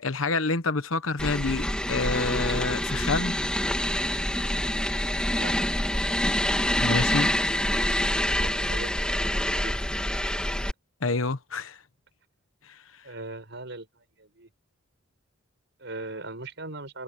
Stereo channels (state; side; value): normal; both; correlation 0.64